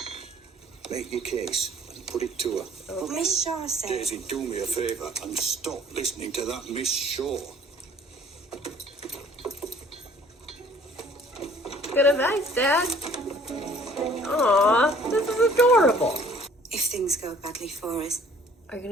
Make your case and put it to her. Miss Shaw said. Daisy, do me a favour and stop listening to that Miss Shaw. Good advice, Dad. Aw, this is adorable. If things go badly for us, Are you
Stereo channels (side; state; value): both; normal; correlation 0.55